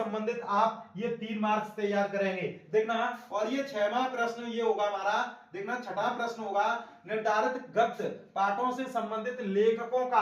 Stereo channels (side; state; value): both; identical; correlation 1.00